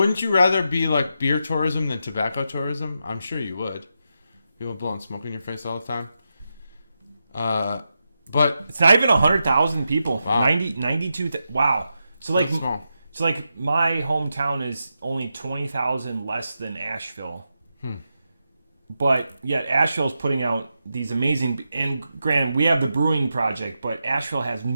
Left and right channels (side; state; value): both; inverted; correlation -0.87